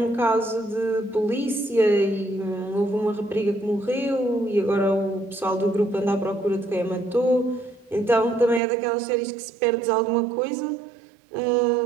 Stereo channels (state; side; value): drops out; left; at 8.6 s